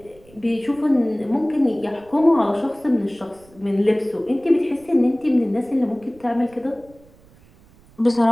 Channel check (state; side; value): noise; right; rumble, 27 dB below the sound